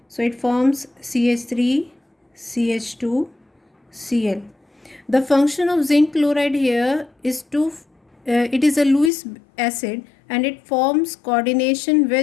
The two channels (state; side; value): drops out; right; at 9.1 s